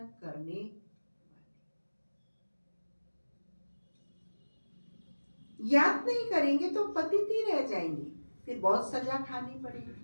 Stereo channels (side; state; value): both; inverted; correlation -1.00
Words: करने वाले। याद नहीं करेंगे तो पतित ही रह जाएंगे, फिर बहुत सजा खानी